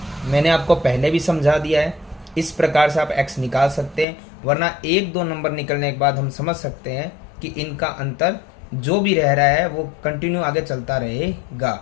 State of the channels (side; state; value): right; drops out; at 4.0 s